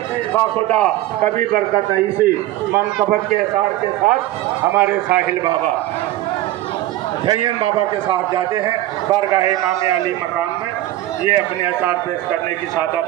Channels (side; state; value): left; quieter; 15.4 dB